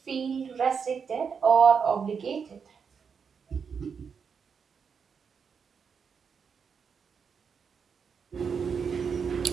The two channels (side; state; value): left; quieter; 6.3 dB